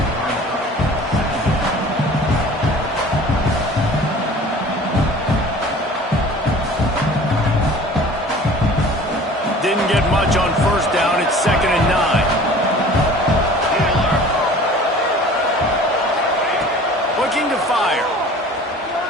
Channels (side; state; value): both; normal; correlation 0.45